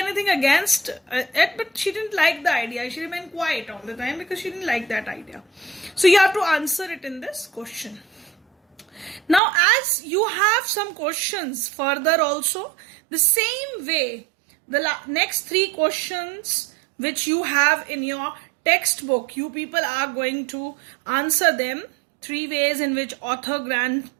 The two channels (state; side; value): drops out; left; at 9.4 s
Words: against it, but she didn't like the idea. She remained quiet all the time because she didn't like that idea. So you have to answer it in this question. Now, as you have some questions further also, the same way, the next 3 questions which you have in your textbook, you people are going to answer them 3 ways in which author